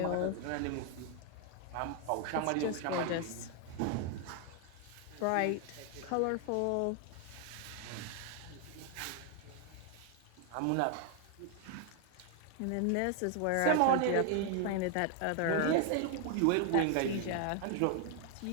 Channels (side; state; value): both; different; correlation 0.00